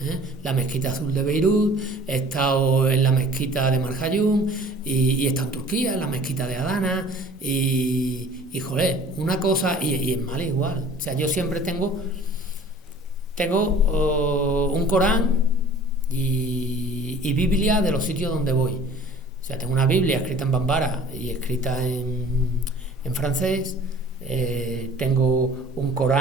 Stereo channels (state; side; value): normal; both; correlation 0.48